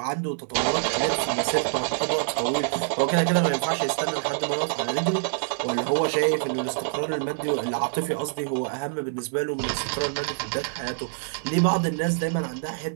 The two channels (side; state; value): left; silent; digital silence